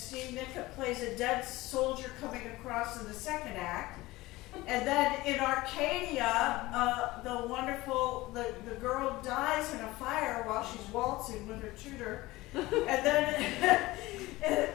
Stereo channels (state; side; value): quieter; right; 19.3 dB